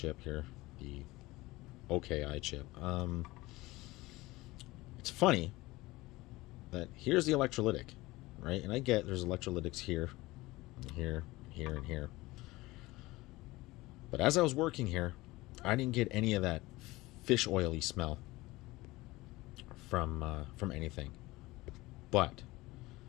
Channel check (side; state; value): right; quieter; 20.0 dB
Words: here, the OKI chip. It's funny that here's the electrolytic, right? And I get there's electrolytics here, and here, here, and here. But as I was working here, I didn't get any of that fish oily smell from anything. But